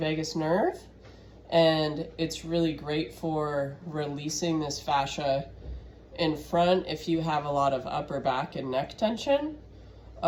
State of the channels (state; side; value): identical; both; correlation 1.00